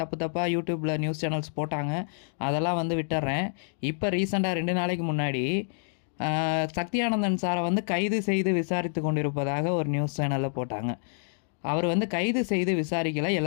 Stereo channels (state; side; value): silent; right; digital silence